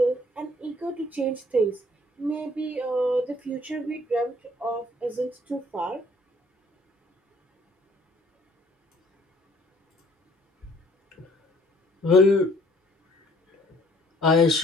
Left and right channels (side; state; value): both; normal; correlation 0.59